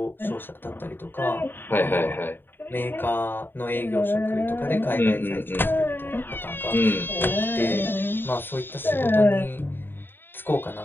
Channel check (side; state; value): right; late; 0.097 ms